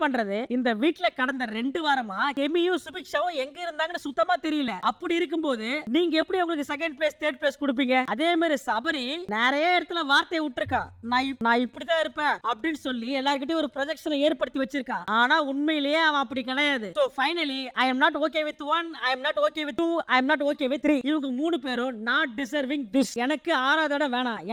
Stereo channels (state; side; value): identical; both; correlation 1.00